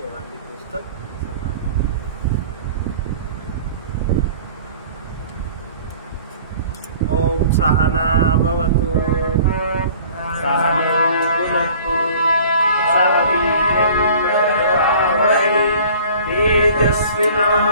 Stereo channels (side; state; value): both; inverted; correlation -0.48